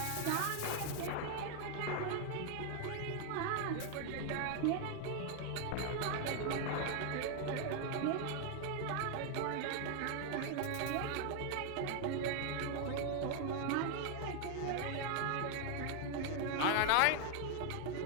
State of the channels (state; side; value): different; both; correlation 0.01